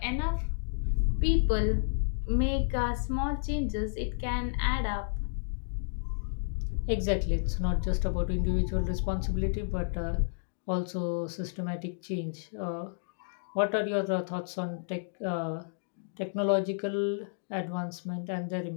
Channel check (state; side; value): silent; right; digital silence